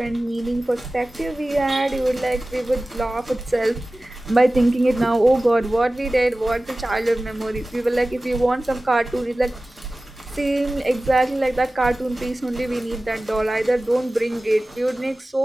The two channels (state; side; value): normal; both; correlation 0.97